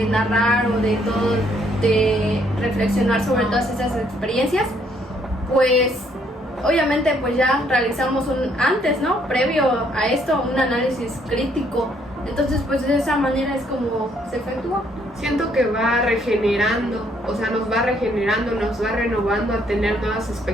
narrar o de todo, de reflexionar sobre todas esas experiencias, pues obviamente pues ya realizamos previo a esto, un análisis crítico. Entonces pues de esa manera es como se efectúa. Siento que va regenerando, nos va regenerando, nos va renovando a tener nuevas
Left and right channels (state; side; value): normal; both; correlation 0.68